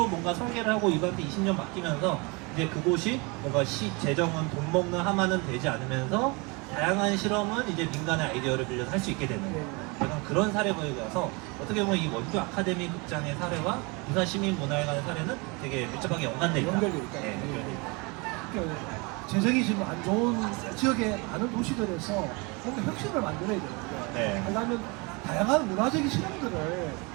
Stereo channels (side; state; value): left; quieter; 28.6 dB